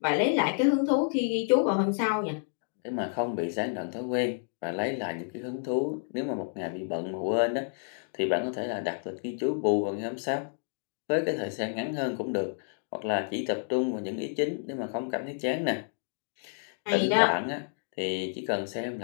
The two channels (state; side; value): silent; right; digital silence